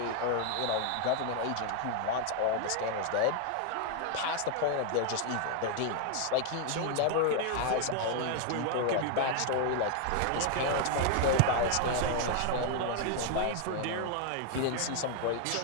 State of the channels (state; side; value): different; both; correlation 0.00